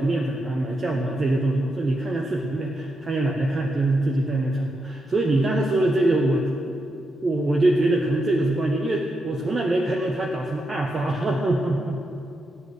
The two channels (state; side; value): normal; both; correlation 0.84